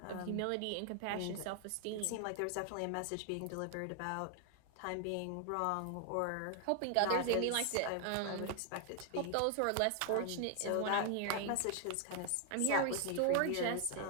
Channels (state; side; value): different; both; correlation 0.00